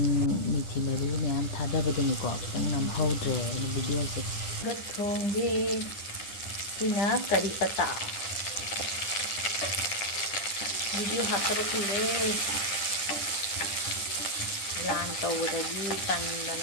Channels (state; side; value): late; right; 10 ms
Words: ꯃꯤꯊꯤ ꯃꯔꯨ ꯃꯌꯥꯝ ꯊꯥꯗꯕꯗꯨꯅꯤꯀꯣ ꯈꯤꯇꯪ ꯅꯝꯍꯧꯗ꯭ꯔꯦ ꯑꯩꯅ ꯚꯤꯗꯤꯑꯣꯁꯦ ꯊꯣꯡꯒꯦ ꯁꯤꯅ ꯀꯔꯤ ꯄꯇꯥ ꯚꯤꯗꯤꯑꯣ ꯍꯥꯞꯇꯕ ꯀꯨꯏꯔꯦ ꯂꯥꯟ ꯇꯧꯕꯗꯒꯤ